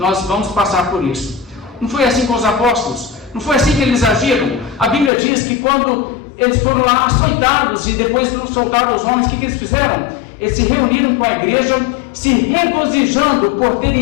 vamos passar por isso. Não foi assim com os apóstolos? Não foi assim que eles agiram? A Bíblia diz que quando eles foram lá açoitados e depois soltaram os homens, o que eles fizeram? Eles se reuniram com a igreja, se regozijando por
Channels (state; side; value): drops out; right; at 5.1 s